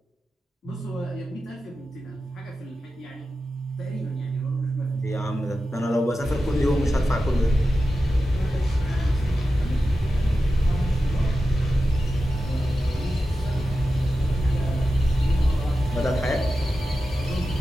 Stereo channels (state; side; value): normal; both; correlation 0.92